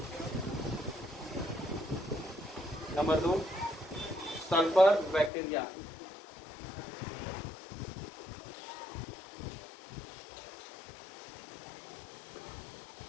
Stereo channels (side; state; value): right; drops out; at 5.3 s